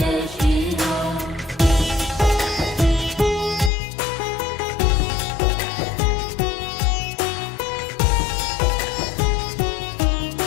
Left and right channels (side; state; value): right; drops out; at 3.7 s